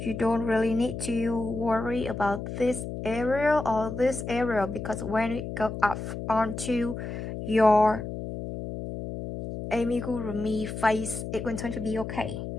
don't really need to worry about this area or this area, because when it goes up onto your amigurumi face, it's going to be okay.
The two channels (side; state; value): left; noise; hum, 7 dB below the sound